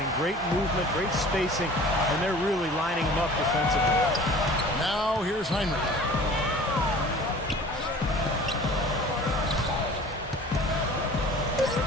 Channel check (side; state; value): both; normal; correlation 0.45